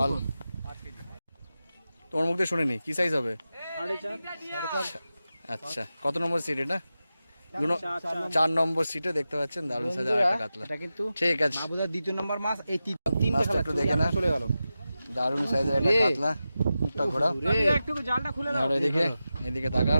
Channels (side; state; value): both; inverted; correlation -0.92